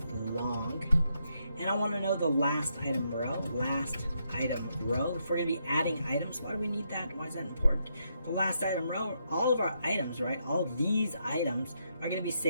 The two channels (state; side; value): inverted; both; correlation -0.79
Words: long. And I want to know the last item row, If we're going to be adding items, why do we need that? Why is that important? The last item row, all of our items, right? All these items are going to be